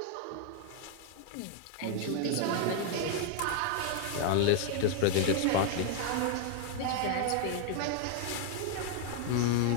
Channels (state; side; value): different; both; correlation 0.00